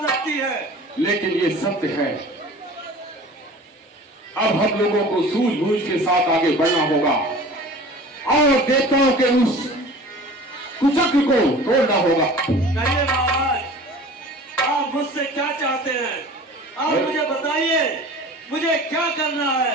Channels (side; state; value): both; normal; correlation 0.42